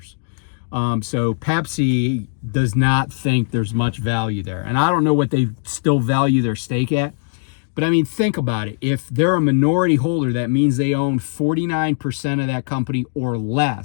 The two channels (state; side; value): silent; right; digital silence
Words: Pepsi does not think there's much value there. And I don't know what they still value their stake at. But I mean, think about it. If they're a minority holder, that means they own 49% of that company or